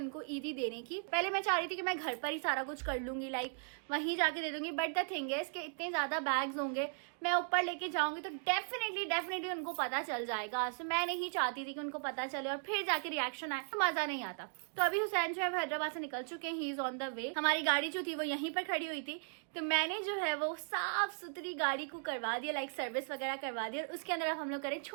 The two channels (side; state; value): left; silent; 53 dB below the other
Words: ईदी देने की। पहले मैं चाह रही थी कि मैं घर पर ही सारा कुछ कर लूंगी, लाइक वहीं जाके दे दूंगी। बट द थिंग है इसके इतने ज्यादा बैग्स होंगे, मैं ऊपर लेके जाऊंगी तो डेफिनेटली उनको पता चल जाएगा। सो मैं नहीं चाहती थी कि उनको पता चले और फिर जाके रिएक्शन आए, तो मजा नहीं आता। तो अभी हुसैन जो है हैदराबाद से निकल चुके हैं, he is on the way. हमारी गाड़ी जो थी वो यहीं पर खड़ी हुई थी, तो मैंने जो है वो साफ सुथरी गाड़ी को करवा दिया, लाइक सर्विस वगैरह करवा दिया। और उसके अंदर अब हम लोग करें